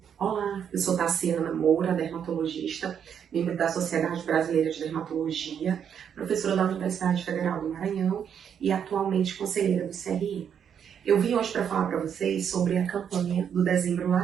Olá, eu sou Tassiana Moura, dermatologista, membro da Sociedade Brasileira de Dermatologia, professora da Universidade Federal do Maranhão e atualmente conselheira do CRI. Eu vim hoje para falar para vocês sobre a campanha do Dezembro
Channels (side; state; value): left; quieter; 8.2 dB